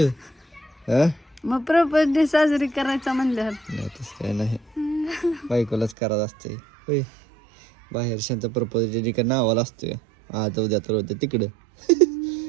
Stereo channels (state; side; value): drops out; left; at 6.0 s